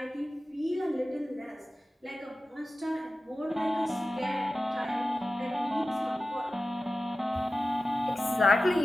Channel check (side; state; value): both; normal; correlation 0.95